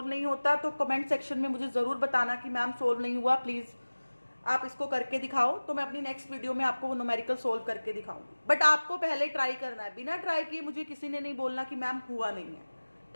नहीं होता तो कमेंट सेक्शन में मुझे ज़रूर बताना कि मैम सोल्व नहीं हुआ, प्लीज़ आप इसको करके दिखाओ, तो मैं अपनी नेक्स्ट वीडियो में आपको वो न्यूमेरिकल सोल्व करके दिखाऊंगी, बट आपको पहले ट्राई करना है, बिना ट्राई किए मुझे किसी ने नहीं बोलना कि मैम हुआ नहीं है।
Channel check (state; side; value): inverted; both; correlation -1.00